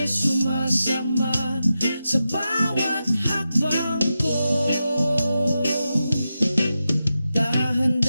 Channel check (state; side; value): inverted; both; correlation -0.90